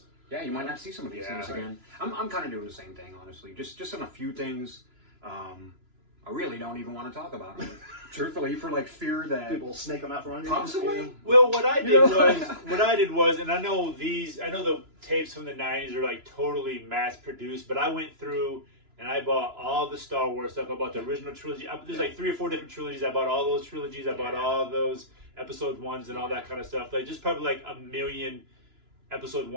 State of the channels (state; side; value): late; left; 2.9 ms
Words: Yeah, you might not see some of these things again. I'm kind of doing the same thing, honestly. Just on a few things. I really don't even want to talk about them, truthfully, for like fear that People will snake them out from under you. possibly. Well, what I did was, and I know the tapes from the '90s are like totally mass produced, but I went through and I bought all the Star Wars stuff. I bought the original trilogy. There's like 3 or 4 different trilogies. I bought all those trilogies. I bought all those episode 1s and all that kind of stuff. Like just probably like 1 million episode